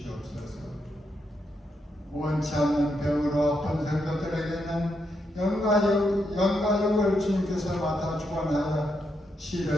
원치 않는 병으로 아픈 성도들에게는 영과 육을 주님께서 맡아 주관하여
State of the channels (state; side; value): normal; both; correlation 0.81